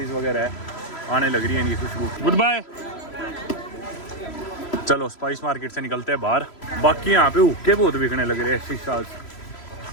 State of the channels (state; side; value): late; right; 3.0 ms